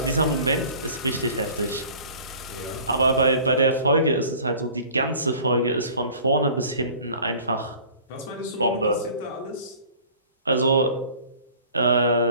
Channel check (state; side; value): inverted; both; correlation -0.48